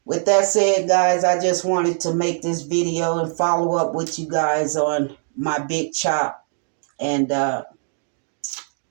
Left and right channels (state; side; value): silent; left; digital silence